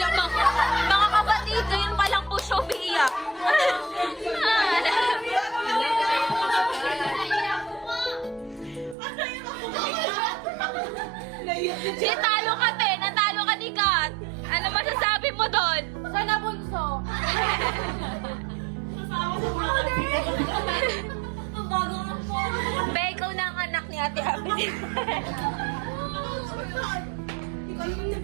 Mga kapatid, ngayon pa lang po siya umiyak. Natalo ka, te. Natalo ka ni Kat. Ano masasabi mo doon? Sana bunso. Ang bago nga po. Be, ikaw na ang anak ni Ate Abby.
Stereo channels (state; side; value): drops out; left; at 9.0 s